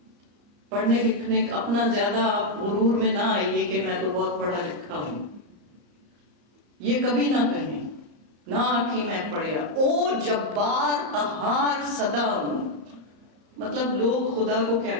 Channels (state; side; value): late; left; 34 ms